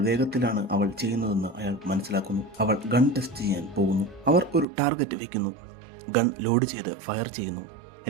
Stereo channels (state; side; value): drops out; left; at 4.7 s